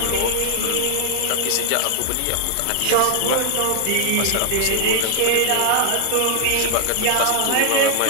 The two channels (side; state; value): both; different; correlation 0.00